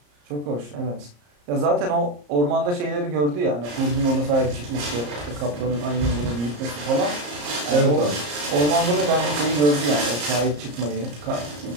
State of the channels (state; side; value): late; left; 34 ms